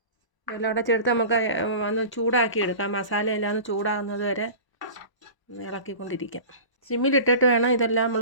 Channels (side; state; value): right; late; 1.0 ms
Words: ഇതെല്ലാം കൂടെ ചേർത്ത് നമുക്ക് ഒന്ന് ചൂടാക്കി എടുക്കാം. മസാലയെല്ലാം ഒന്ന് ചൂടാകുന്നത് വരെ ഇളക്കിക്കൊണ്ടിരിക്കാം. സിമ്മിലിട്ടിട്ട് വേണം ഇതെല്ലാം നമ്മൾ